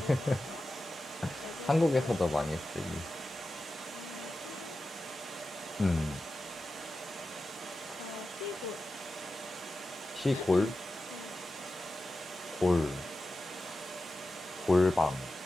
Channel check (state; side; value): normal; both; correlation 0.92